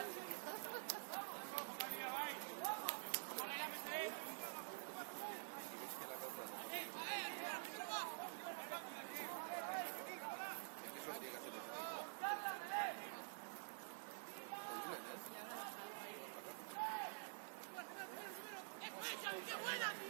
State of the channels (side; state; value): left; silent; digital silence